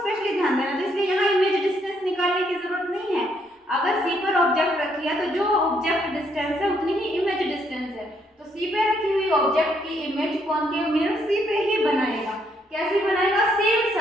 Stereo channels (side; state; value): both; normal; correlation 0.72